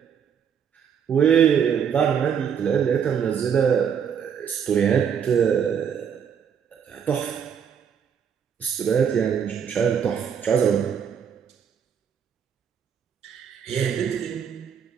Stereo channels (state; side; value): quieter; left; 7.7 dB